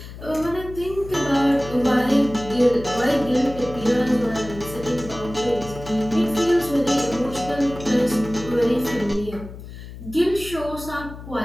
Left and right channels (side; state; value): left; noise; hum, 13 dB below the sound